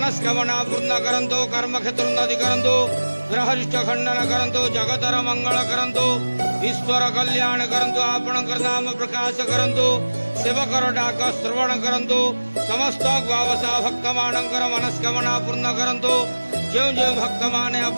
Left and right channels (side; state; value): both; inverted; correlation -1.00